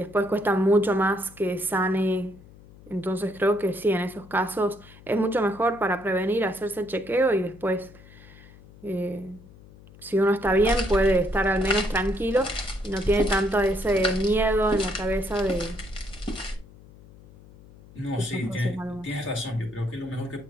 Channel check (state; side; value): noise; left; hum, 22 dB below the sound